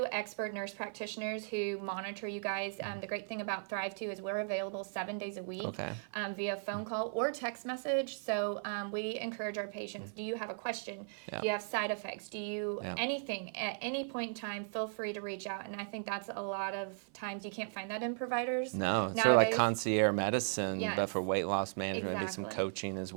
expert nurse practitioners who monitor you guys. The great thing about Thrive too is we're available 7 days a week via phone call or text message. So we encourage our patients, do you have a question? Do you have side effects? Do you anything at any point in time, feel free to reach out. And I think that's a lot of times you can't find that in providers nowadays. Sort of like concierge medicine, but for weight loss management and some coaching as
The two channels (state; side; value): silent; left; 53 dB below the other